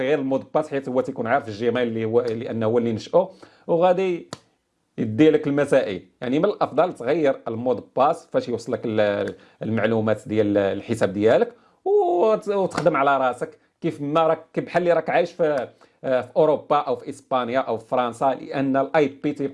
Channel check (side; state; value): both; identical; correlation 1.00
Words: غير المود باس، حيت هو تيكون عارف الجيميل اللي هو لانه هو اللي نشأه، وغادي يدي لك المسائل. يعني من الافضل تغير المود باس فاش يوصلك المعلومات ديال الحساب ديالك، وتخدم على راسك كيف ما راك، بحال اللي راك عايش في اوروبا او في اسبانيا او في فرنسا، لان الاي بي